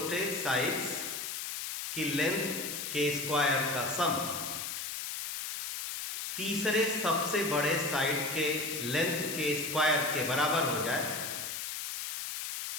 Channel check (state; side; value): noise; left; hiss, 5 dB below the sound